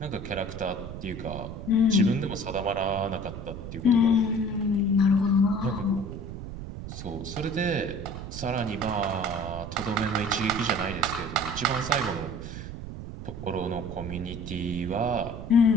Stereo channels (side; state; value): right; noise; rumble, 9 dB below the sound